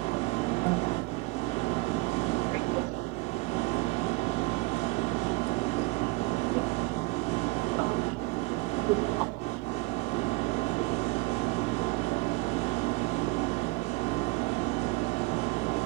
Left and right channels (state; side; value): quieter; left; 24.2 dB